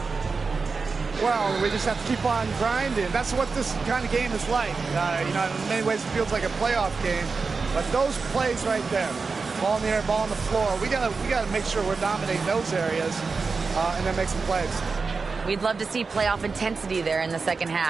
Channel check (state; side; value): quieter; left; 4.6 dB